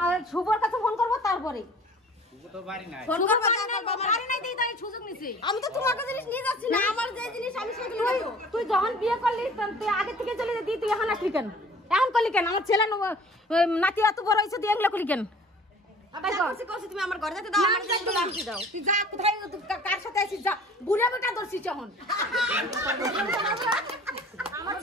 শুভর কাছে ফোন করবো। তারপরে আমি তো তোমার জিনিস নিয়ে যাচ্ছি না। আমার যে জিনিস আমি সেগুলো তুই যখন বিয়ে করলি তুই আগে থেকে চলে যেতি। তুই এখন আসলি কেন? এখন করলি কেন? আমার ছেলে নাতি এত বড় হয়েছে, তুই এগুলো করলি কেন? তুমি আমার ঘরে যেতে দাও। তুই যা, কোথায় কার সাথে আসিস যা। বুড়া বেটা ধরছিস এখন। আমার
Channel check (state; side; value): normal; both; correlation 0.48